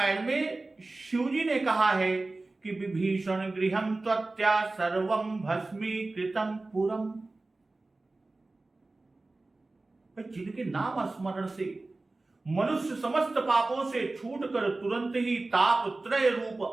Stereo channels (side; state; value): left; quieter; 3.2 dB